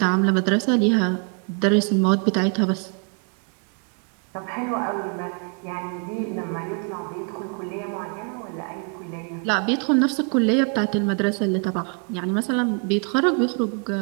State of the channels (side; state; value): left; quieter; 39.1 dB